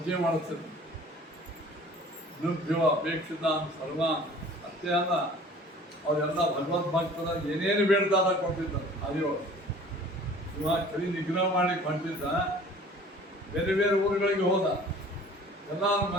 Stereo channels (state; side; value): normal; both; correlation 0.48